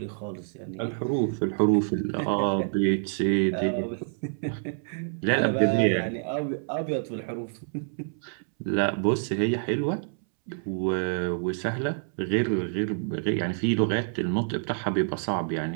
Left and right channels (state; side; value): silent; left; 60 dB below the other